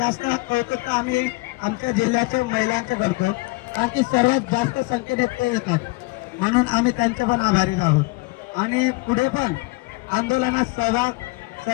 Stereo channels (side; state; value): right; quieter; 24.8 dB